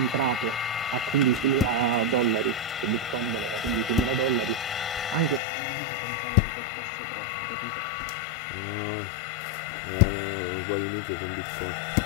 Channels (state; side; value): drops out; right; at 5.4 s